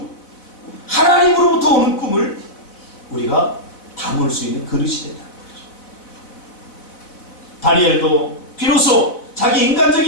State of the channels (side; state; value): right; late; 4.1 ms